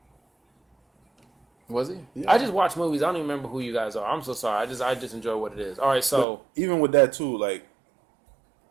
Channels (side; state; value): left; drops out; at 6.2 s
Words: was he? Yeah. I just watch movies. I don't even remember who you guys are. I'm so sorry. I just enjoy what it is. All right. So But even with that too, like